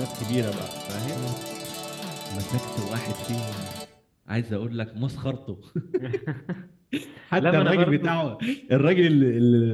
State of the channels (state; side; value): identical; both; correlation 1.00